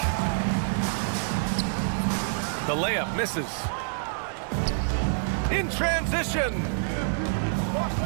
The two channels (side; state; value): left; silent; 60 dB below the other